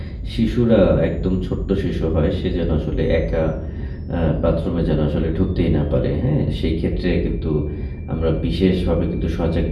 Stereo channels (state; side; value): identical; both; correlation 1.00